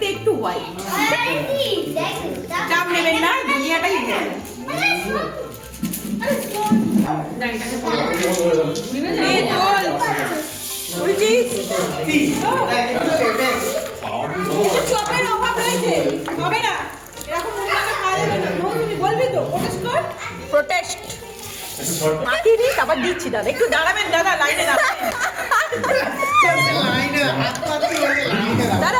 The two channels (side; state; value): both; identical; correlation 1.00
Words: একটু হোয়াইট। চাপ নেবেন না, দুনিয়াটাই চপের অভাব রয়েছে, হবে না এরকম বলবি তো প্রোটেস্ট মাখিয়ে দিই, তারপর দিচ্ছি। দাদা একটু দাঁড়াবেন, দাদা লাইনে দাঁড়াবেন। দাদা